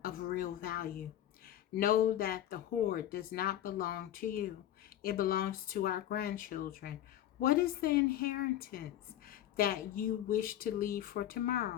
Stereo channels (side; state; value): right; quieter; 12.1 dB